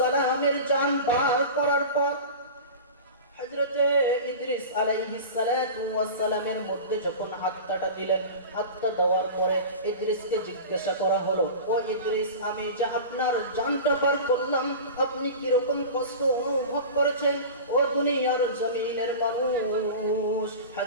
জান বার করার পর হযরতে ইদ্রিস আলাইহিস সালাতু ওয়াস সালামের মধ্যে যখন আত্মাটা দিলেন, আত্মা দেওয়ার পরে ইদ্রিসকে জিজ্ঞাসা করা হলো, ও ইদ্রিস, আমি যে আপনার জানটা বার করলাম, আপনি কি রকম কষ্ট অনুভব করেছেন? ও দুনিয়ার জমিনের মানুষ,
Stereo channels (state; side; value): inverted; both; correlation -0.32